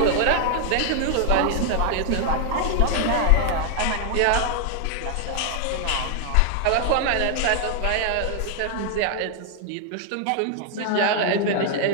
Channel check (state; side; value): different; both; correlation 0.00